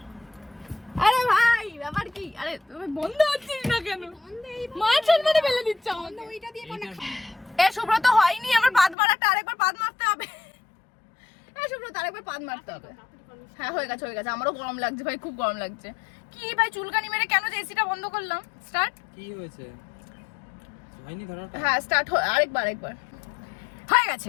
আরে ভাই ব্যাপার কি? আরে তুমি বন্ধ হচ্ছিস না কেন? মাছের মধ্যে ফেলে দিচ্ছ আমাকে। ওইটা দিয়ে কোন সুব্রত হয়নি, আমার পাদ মারাটা আরেকবার পাদ মারতে হবে। সুব্রত আরেকবার পাদ মারতে হবে। হ্যাঁ হয়ে গেছে। আমারও গরম লাগছে ভাই, খুব গরম লাগছে। কি ভাই চুলকানি মেরে কেন যে এসিটা বন্ধ করলাম? স্টার্ট। কি হয়েছে? হয়নি ধরাটা? হ্যাঁ স্টার্ট আরেকবার হয়ে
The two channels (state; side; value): drops out; right; at 9.0 s